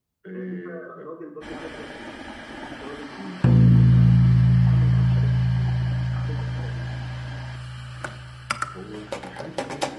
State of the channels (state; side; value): identical; both; correlation 1.00